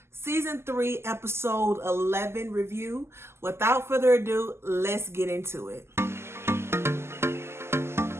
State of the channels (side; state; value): left; late; 0.12 ms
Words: Season 3 Episode 11 review. Without further ado, let's get into it.